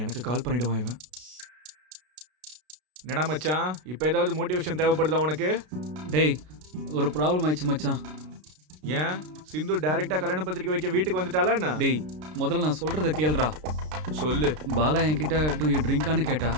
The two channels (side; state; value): left; late; 33 ms